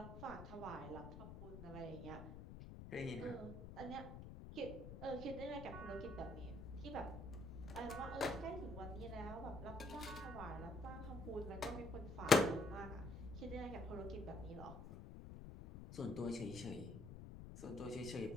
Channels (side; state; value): left; noise; rumble, 10 dB below the sound